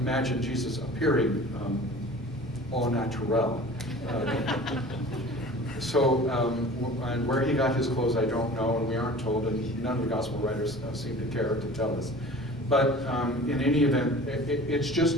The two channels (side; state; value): both; normal; correlation 0.42